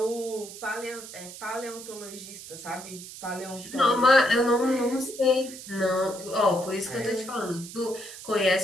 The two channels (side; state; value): right; noise; hiss, 13 dB below the sound